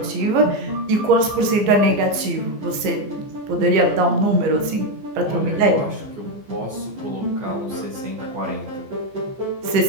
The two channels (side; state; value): left; late; 15 ms